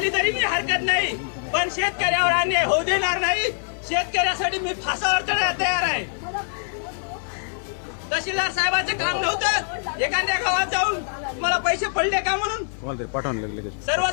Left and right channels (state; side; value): silent; right; 55 dB below the other